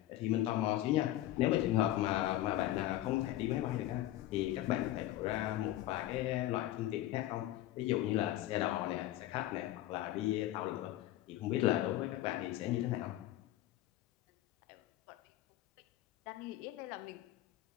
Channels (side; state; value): right; quieter; 14.5 dB